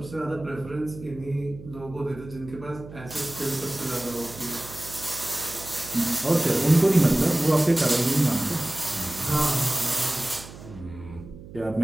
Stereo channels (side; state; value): right; noise; hum, 16 dB below the sound